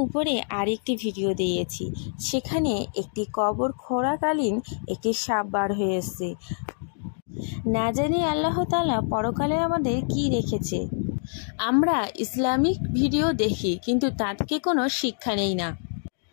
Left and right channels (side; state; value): right; silent; digital silence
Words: উপরে আরেকটি ভিডিও দিয়েছি, সেখানে একটি কবর খোঁড়াকালীন একটি সাপ বার হয়ে এসেছে। না জানি আল্লাহ তাআলা পরকালে আমাদের কি রেখেছে। আমরা ইসলামিক ভিডিও দেখি, কিন্তু তা থেকে কোনো শিক্ষা নেই না।